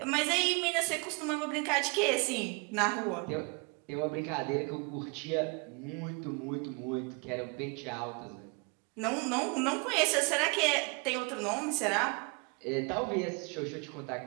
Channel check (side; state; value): left; quieter; 31.6 dB